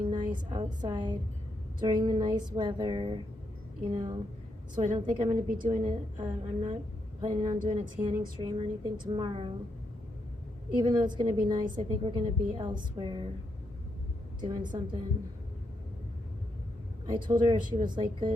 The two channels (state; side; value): normal; both; correlation 0.80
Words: nice outside during the nice weather, you know. So I don't think I'm gonna be doing it. I'm not planning on doing a tanning stream or anything tomorrow. Even though it's gonna be nice, I think we're gonna be elsewhere doing something. I told her if she was like